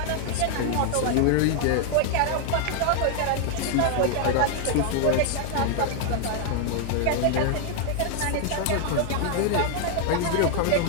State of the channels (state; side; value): different; both; correlation 0.00